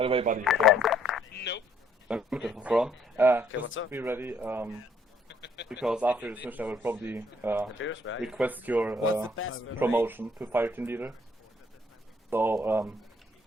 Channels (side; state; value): both; normal; correlation 0.65